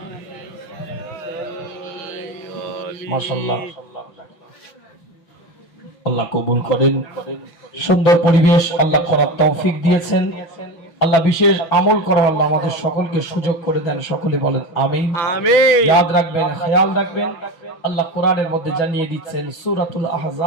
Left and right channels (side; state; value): right; late; 5.9 ms